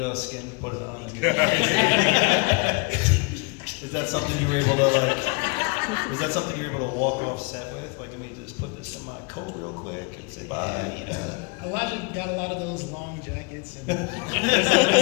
skin, put it on. Is that something you were able to is that something you were able to walk off set with? Like, let me just put this in my coat real quick and say bye. Elijah got a lot of those long jackets, and there's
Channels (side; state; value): right; quieter; 31.2 dB